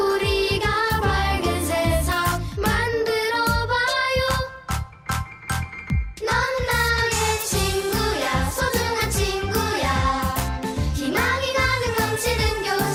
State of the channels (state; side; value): identical; both; correlation 1.00